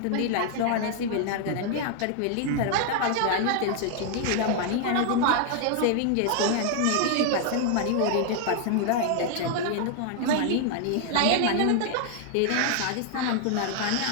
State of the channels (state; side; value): different; both; correlation 0.00